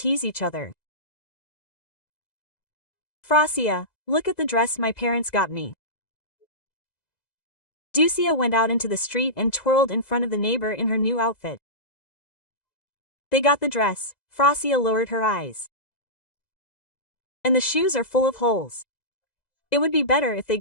each other. Frosia, look at the dress my parents got me. Ducia went out into the street and twirled in front of the neighbor in her new outfit. They got the dress, Frosia lowered her eyes. And the shoes are full of holes. It would be better if they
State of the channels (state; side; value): late; right; 2.0 ms